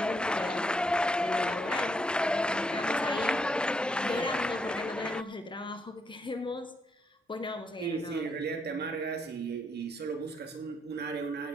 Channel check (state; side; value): normal; both; correlation 0.76